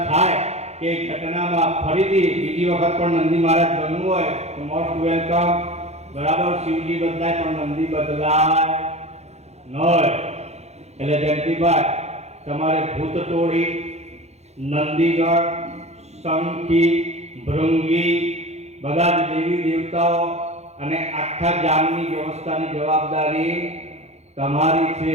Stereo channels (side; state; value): left; late; 0.31 ms